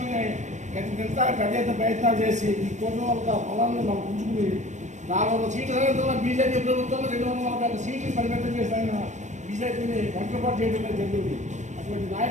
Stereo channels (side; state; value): left; late; 0.34 ms